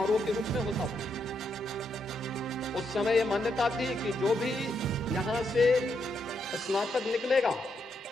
के रूप में होता था। उस समय यह मान्यता थी कि जो भी यहां से स्नातक निकलेगा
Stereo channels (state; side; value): normal; both; correlation 0.79